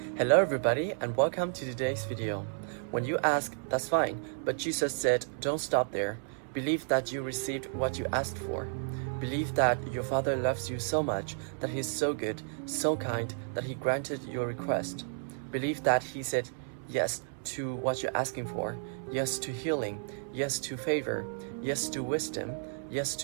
Hello everybody and welcome to today's video. When you ask, that's fine, but Jesus said, don't stop there. Believe that you received what you asked for. Believe that your Father loves you so much, that He's so good, so kind, that He granted your request. Believe that He said yes to what you're asking for, yes to healing, yes to favor, yes to wisdom, yes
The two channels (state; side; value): silent; left; 56 dB below the other